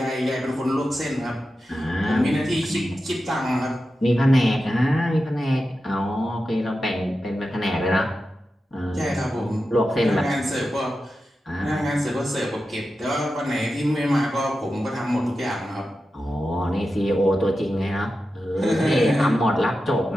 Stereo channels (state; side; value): normal; both; correlation 0.91